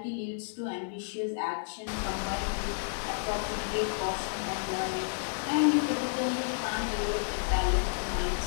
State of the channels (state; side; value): silent; right; digital silence